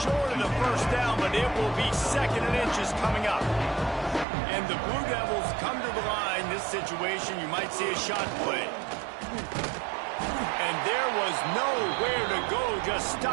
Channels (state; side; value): drops out; left; at 4.2 s